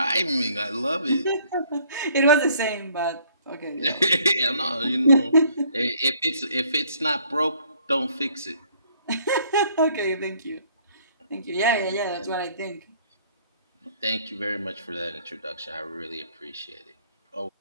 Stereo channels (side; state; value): both; inverted; correlation -0.62